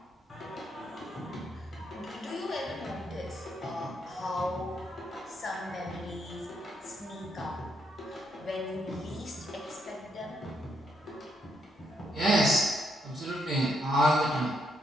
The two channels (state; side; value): normal; both; correlation 0.77